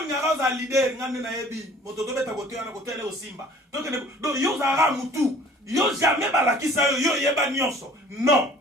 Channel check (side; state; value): both; normal; correlation 0.51